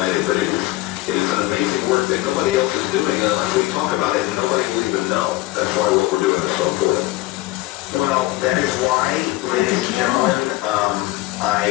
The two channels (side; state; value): right; quieter; 18.6 dB